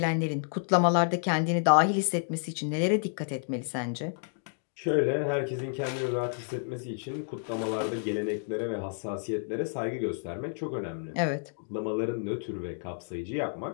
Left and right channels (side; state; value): right; silent; digital silence